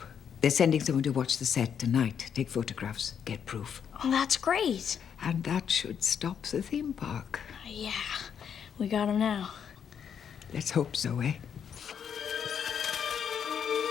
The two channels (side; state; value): right; quieter; 7.8 dB